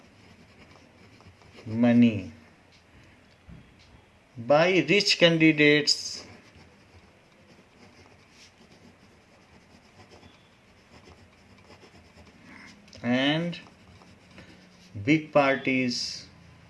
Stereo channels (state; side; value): identical; both; correlation 1.00